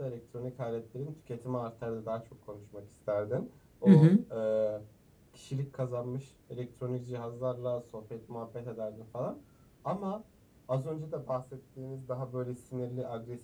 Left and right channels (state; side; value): identical; both; correlation 1.00